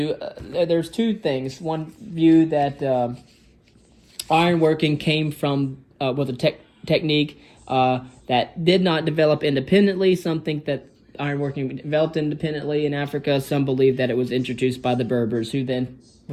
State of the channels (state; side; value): identical; both; correlation 1.00